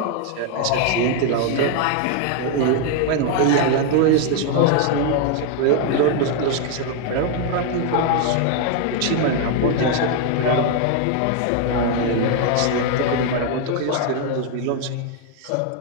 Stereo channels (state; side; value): different; both; correlation 0.01